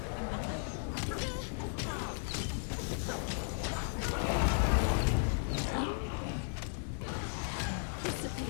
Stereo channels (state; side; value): silent; right; digital silence